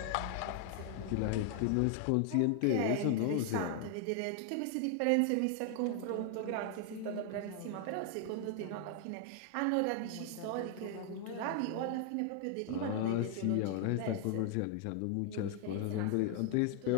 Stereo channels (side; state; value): both; different; correlation 0.00